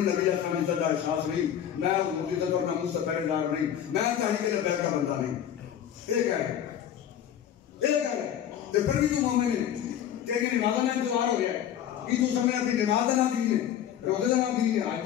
نبی اسلام کی عزت کا احساس نہیں میں حضور کی عزت اور ناموس کا پہرے دار نہیں میں تحریک لبیک کا بندہ نہیں یہ کہہ رہے تو پھر بھی تو مومن ہے تیری نماز کا انتظار ہو گیا ہے کہ تو سمجھنا کہ نماز کا نہ دین ہے روزے کا نہ دین ہے حج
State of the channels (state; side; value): quieter; right; 10.1 dB